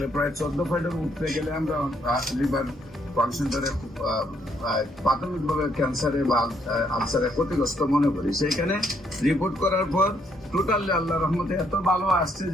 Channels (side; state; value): both; normal; correlation 0.72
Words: প্রায় 14 পয়েন্টের উঠতে গেলে আমরা লিভার ফাংশনটারে প্রাথমিকভাবে ক্যান্সারে বা আলসারে ক্ষতিগ্রস্ত মনে করি। সেইখানে রিপোর্ট করার পর টোটালি আল্লাহ রহমতে এত ভালো আসছে